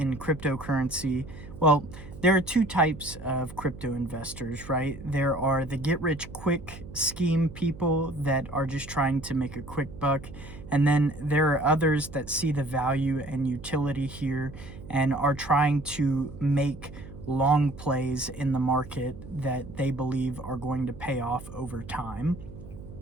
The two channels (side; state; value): right; noise; hum, 15 dB below the sound